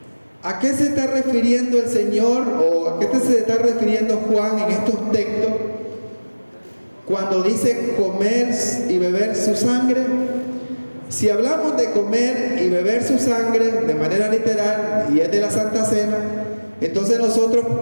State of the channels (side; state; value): both; inverted; correlation -1.00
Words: ¿A qué se está refiriendo el Señor o a qué se está refiriendo Juan en estos textos cuando dice comer y beber su sangre? Si hablamos de comer y beber su sangre de manera literal y es de la Santa Cena, entonces nosotros